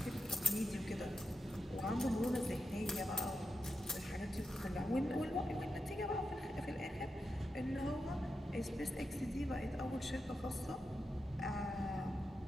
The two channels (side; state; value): both; normal; correlation 0.88